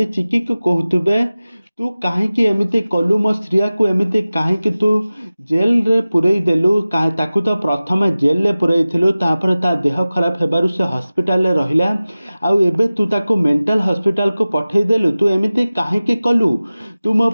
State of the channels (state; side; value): inverted; both; correlation -0.97